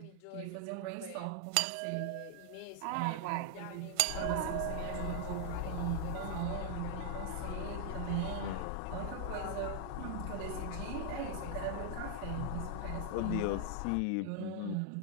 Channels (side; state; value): both; different; correlation 0.00